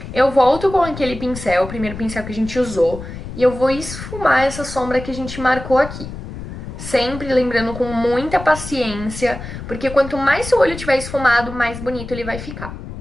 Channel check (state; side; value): noise; left; rumble, 10 dB below the sound